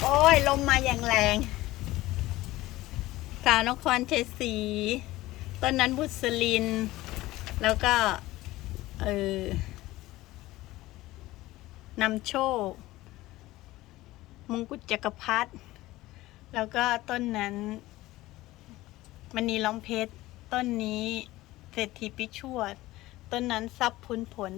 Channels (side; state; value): right; quieter; 17.7 dB